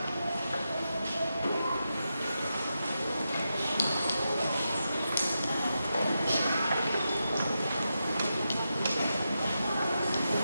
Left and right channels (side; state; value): both; inverted; correlation -0.88